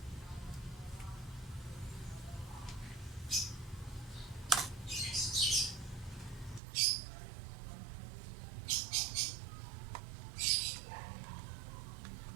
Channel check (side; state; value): left; drops out; at 6.6 s